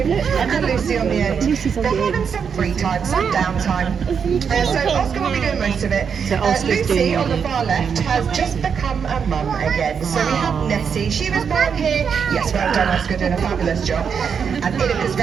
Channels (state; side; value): quieter; left; 6.7 dB